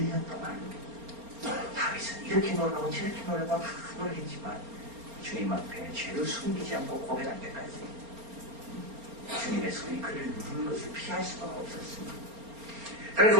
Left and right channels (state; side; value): late; left; 4.3 ms